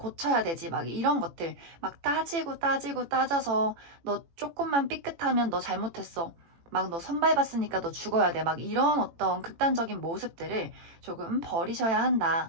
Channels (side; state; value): left; late; 18 ms